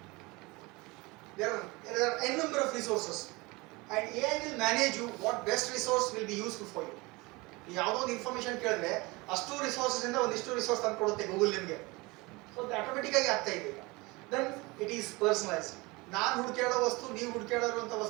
There are n number of resources, and AI will manage you what best resource will be useful for you. ಯಾವುದೋ ಒಂದು information ಕೇಳಿದ್ರೆ ಅಷ್ಟು resources ಇಂದ ಒಂದಿಷ್ಟು resource ತಂದು ಕೊಡುತ್ತೆ Google ನಿಮಗೆ. So ಅದು ಆಟೋಮೆಟಿಕ್ ಆಗಿ ಆಗ್ತಾ ಇದೆ ಈಗ. Then it is personalised. ನಾನು ಹುಡುಕಾಡೋ ವಸ್ತು, ನೀವು ಹುಡುಕಾಡಿರುವಂಥ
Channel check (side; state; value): left; quieter; 24.2 dB